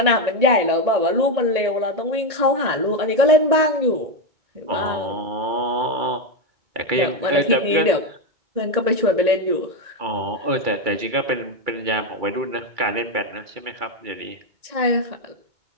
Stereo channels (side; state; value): left; late; 1.8 ms